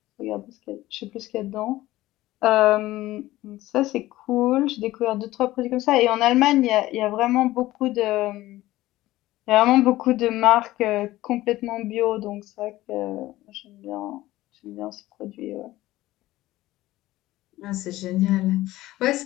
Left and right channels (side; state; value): right; quieter; 16.6 dB